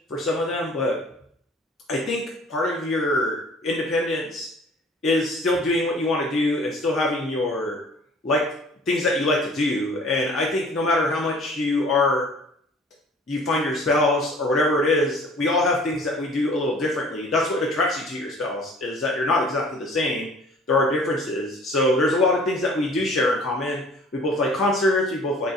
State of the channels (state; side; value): normal; both; correlation 0.51